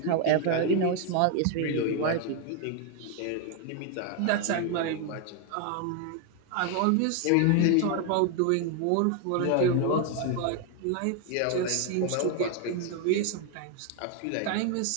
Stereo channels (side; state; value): both; different; correlation 0.01